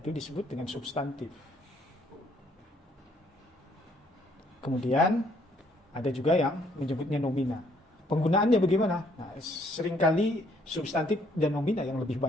disebut dengan substantif. Kemudian ada juga yang menyebutnya nomina. Penggunaannya bagaimana? Nah, seringkali substantif dan nomina yang lebih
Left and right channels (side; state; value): both; normal; correlation 0.66